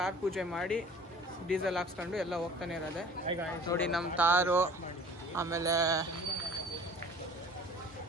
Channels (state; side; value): normal; both; correlation 0.46